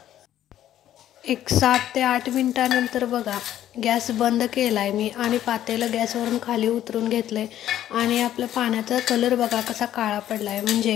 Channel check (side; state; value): right; quieter; 12.0 dB